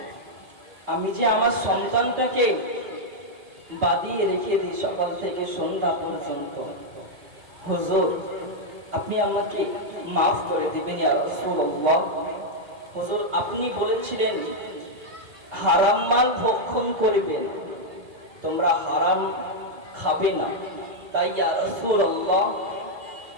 আমি যে আমার সন্তানটাকে বাঁধিয়ে রেখে দিই সকাল থেকে সন্ধ্যা পর্যন্ত, হুজুর আপনি আমাকে maaf করে দিবেন। ইয়া রাসূলুল্লাহ, হুজুর আপনি বলেছিলেন হারাম মাল ভক্ষণ করবেন, তোমরা হারাম খাবে না, তাই ইয়া রাসূলুল্লাহ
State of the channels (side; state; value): left; late; 2.6 ms